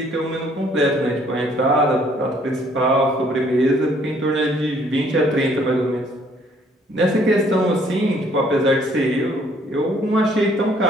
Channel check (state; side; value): normal; both; correlation 0.63